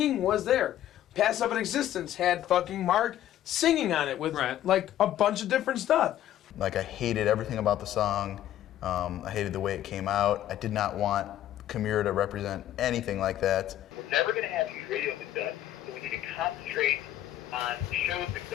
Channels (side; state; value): right; quieter; 12.4 dB